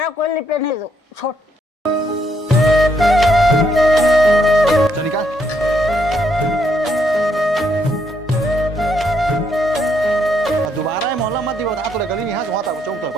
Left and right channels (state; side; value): normal; both; correlation 0.74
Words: कोई लिफ्ट नहीं दो छोड़। चल निकाल दोबारा मोहल्ला मत दी बता तो गली में यहाँ वहाँ तक चौक तक